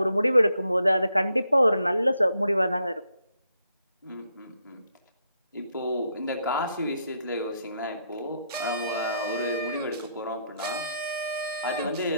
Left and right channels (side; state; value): both; inverted; correlation -0.77